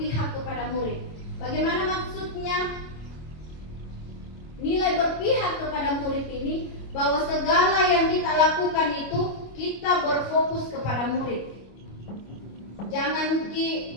kepada murid. Bagaimana maksudnya? Nilai berpihak kepada murid ini bahwa segala yang kita lakukan itu kita berfokus kepada murid. Jangan ikuti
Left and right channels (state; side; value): late; right; 25 ms